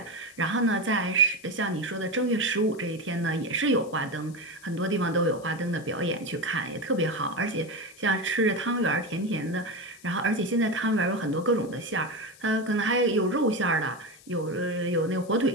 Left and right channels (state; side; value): noise; left; hiss, 23 dB below the sound